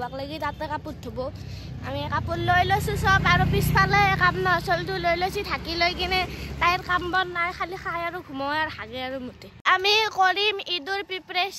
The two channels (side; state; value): both; identical; correlation 1.00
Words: লাগি তাতে কাপোৰ ধুব। আমি কাপোৰ লৈ লৈছো সব আৰু পিছফালে কাম নচলটো লৈ লৈছি ঢাকি লৈ কিনে তাইৰ কাম বন নাই খালি খাই আৰু ঘুমায় আৰু হাগে আৰু মুতে। আমি কৰিম ঈদৰ